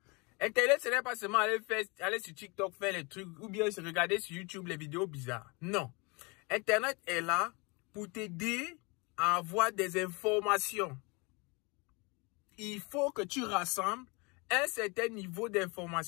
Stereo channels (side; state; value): right; quieter; 28.7 dB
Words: Internet, ce n'est pas seulement aller sur TikTok faire les trucs ou bien regarder sur YouTube les vidéos bizarres. Non. Internet est là pour t'aider à avoir des informations. Il faut que tu rassembles un certain niveau